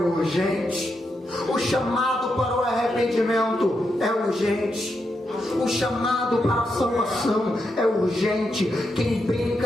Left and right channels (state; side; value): normal; both; correlation 0.84